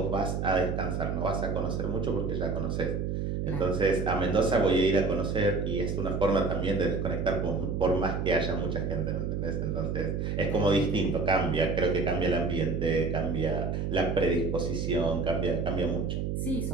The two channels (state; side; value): noise; right; hum, 1 dB below the sound